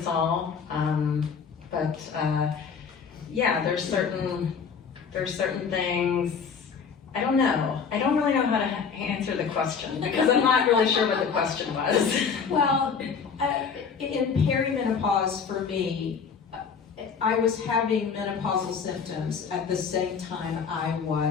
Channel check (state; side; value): quieter; right; 6.1 dB